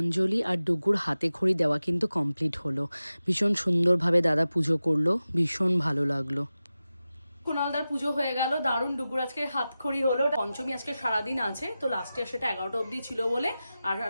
আর ডুগুর হাতে খড়ি দেওয়া কিন্তু কমপ্লিট হলো। ভীষণ সুন্দরভাবে দাদা পুজো করলো, ভীষণ ভালো লাগলো। কুণালদার পুজো হয়ে গেল, দারুণ। ডুগুর আজকে হাতখড়ি হলো, পঞ্চমী আজকে সারাদিন আছে, তো লাস্ট ইয়ার সেটা 11টা অবধি ছিল বলে আর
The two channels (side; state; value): both; inverted; correlation -0.94